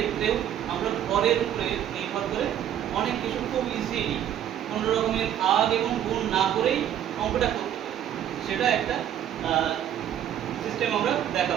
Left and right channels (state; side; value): quieter; left; 10.5 dB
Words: আমরা ভরের উপরে নির্ভর করে অনেক কিছু খুব ইজিলি কোনো রকমের ভাগ এবং গুণ না করেই অঙ্কটা করতে পারি। সেটা একটা সিস্টেম আমরা